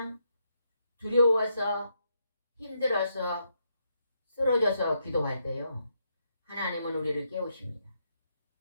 두려워서 힘들어서 쓰러져서 기도할 때요, 하나님은 우리를 깨우십니다.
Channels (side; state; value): both; inverted; correlation -0.78